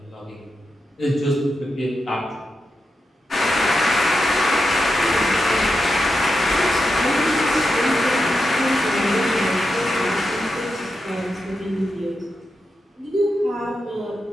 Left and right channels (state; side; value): normal; both; correlation 0.87